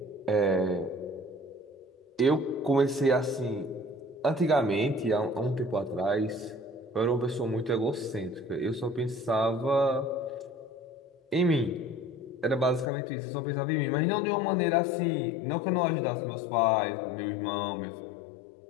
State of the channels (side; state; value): right; drops out; at 12.9 s